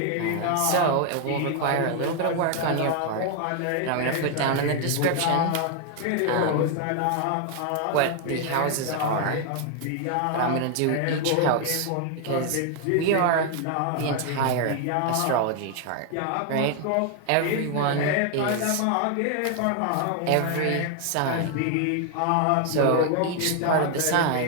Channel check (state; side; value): different; both; correlation 0.00